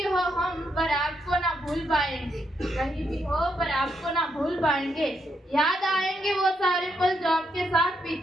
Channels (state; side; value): normal; both; correlation 0.78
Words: हो हम पर आपको ना भूल पाएंगे, कहीं भी हो पर आपको ना भूल पाएंगे। याद आएंगे वो सारे पल जो आपके साथ